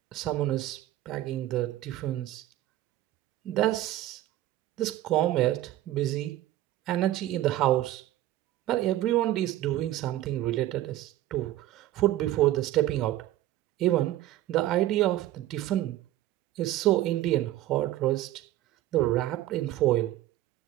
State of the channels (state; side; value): quieter; left; 14.4 dB